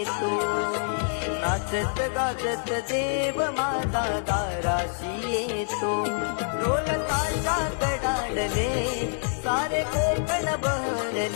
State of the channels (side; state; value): right; silent; digital silence